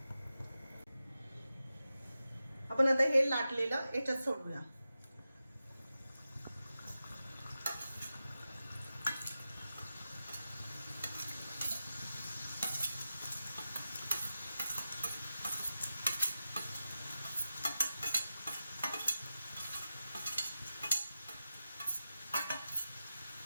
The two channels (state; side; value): inverted; both; correlation -0.92